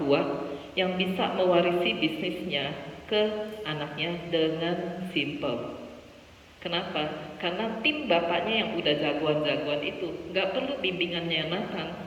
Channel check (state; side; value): identical; both; correlation 1.00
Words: yang bisa mewarisi bisnisnya ke anaknya dengan simple? Kenapa? Karena tim bapaknya yang udah jagoan-jagoan itu nggak perlu bimbingannya Nathan,